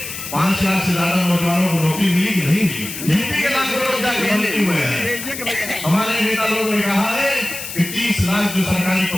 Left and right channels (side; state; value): left; noise; hiss, 9 dB below the sound